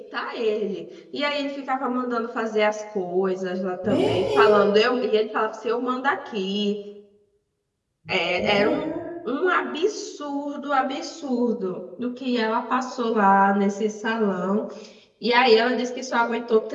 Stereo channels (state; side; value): identical; both; correlation 1.00